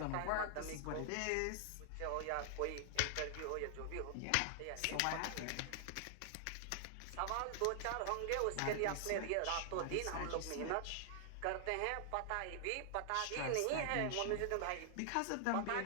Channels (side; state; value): both; different; correlation 0.00